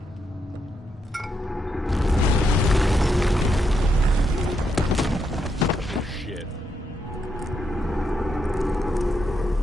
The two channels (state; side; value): normal; both; correlation 0.80